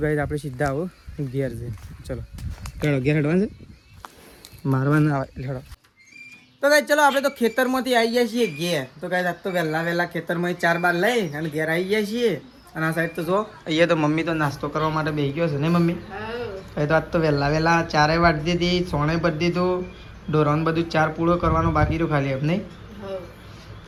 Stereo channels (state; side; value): identical; both; correlation 1.00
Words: ગાઈસ આપણે સીધા આવો ઘેર જઈને. ચલો હેડો ઘેર હેડવાનું છે મારવાનું આવે હેડો. તો ગાઈસ ચલો આપણે તો ખેતરમાંથી આવી જાય છીએ ઘેર. તો ગાઈસ આજ તો વહેલા ખેતરમાં 4 બાર લઈ અને ઘેર આવી જાય છીએ. અને આ સાઈડ તો જો અહીંયા તો મમ્મી તો નાસ્તો કરવા માટે બેસી ગયો છે ને મમ્મી. તો આજ તો વહેલા 4 વાટી દીધી સોણે ભરી દીધું ઢોરાનું બધું 4 પૂળો કરવાનો બાકી રહ્યો ખાલી એમ નહીં.